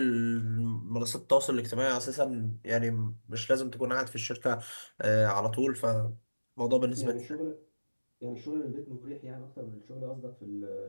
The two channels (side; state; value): both; inverted; correlation -1.00